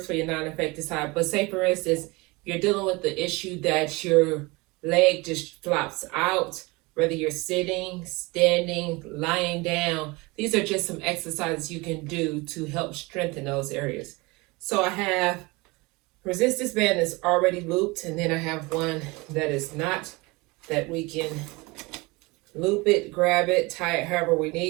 for your non-affected side, but say for instance, you're dealing with the issue that your leg just flops out, whether you're sitting, standing, lying down. These are just some exercises you can do to help strengthen those areas. So I have resistance band that's already looped, and then I have one that is not, that we can loop it, grab it, tie it however we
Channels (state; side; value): quieter; left; 24.5 dB